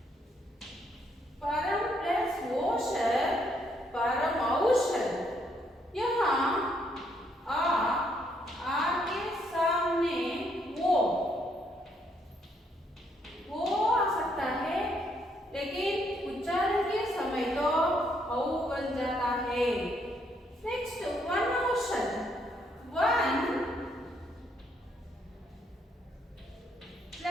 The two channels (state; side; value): normal; both; correlation 0.72